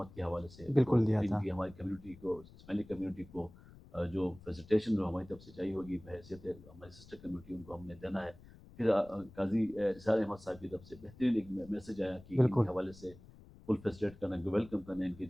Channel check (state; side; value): noise; left; rumble, 20 dB below the sound